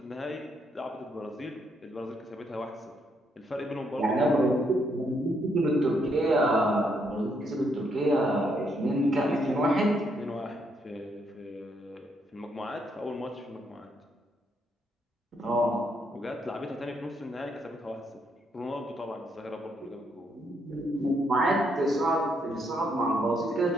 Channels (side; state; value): both; normal; correlation 0.75